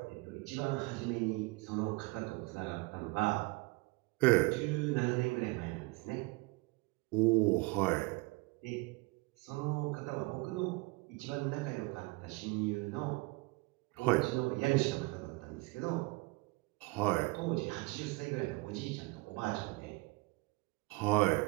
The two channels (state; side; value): quieter; left; 24.6 dB